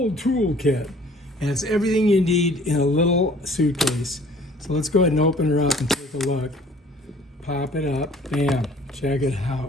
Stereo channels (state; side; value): normal; both; correlation 0.53